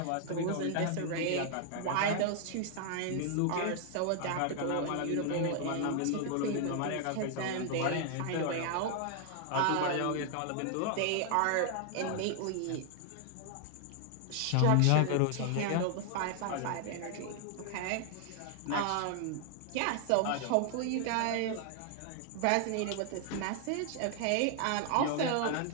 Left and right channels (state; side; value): different; both; correlation 0.00